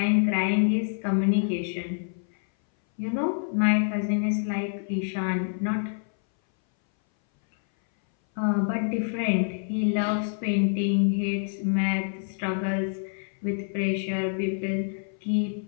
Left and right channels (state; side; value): silent; right; 59 dB below the other